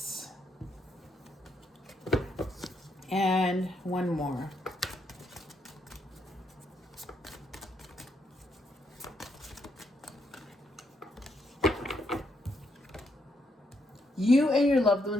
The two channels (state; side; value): normal; both; correlation 0.77